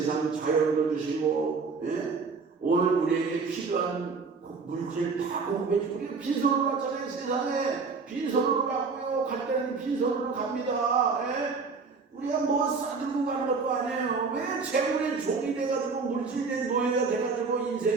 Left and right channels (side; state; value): left; quieter; 4.7 dB